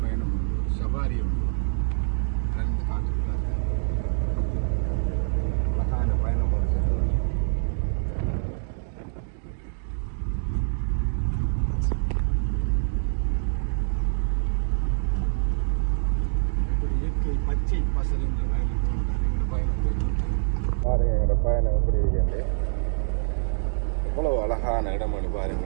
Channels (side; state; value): left; silent; digital silence